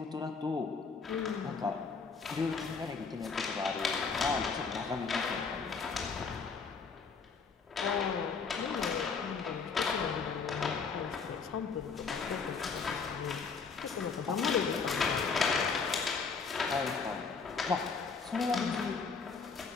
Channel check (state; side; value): quieter; right; 5.2 dB